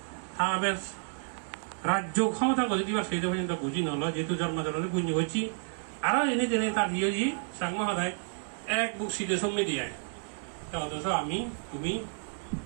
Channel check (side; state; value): left; silent; 57 dB below the other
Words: আবার রাজ্য ক্ষমতা করে দিবা সেই পর্যন্ত বুঝি নল যেহেতু জন্মজনে পুণ্য হচ্ছি আরো এনে জেনে তার দিয়ে দি সাংগ সদায় এক বুক সিদে সমি দিয়ে অথচ আমি তুমি